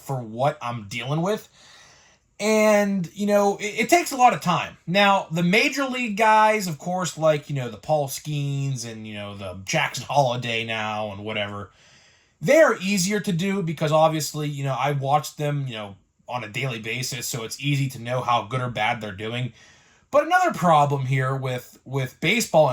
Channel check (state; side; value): identical; both; correlation 1.00